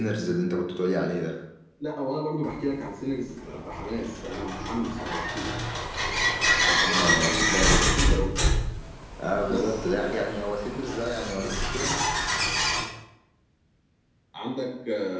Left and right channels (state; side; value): identical; both; correlation 1.00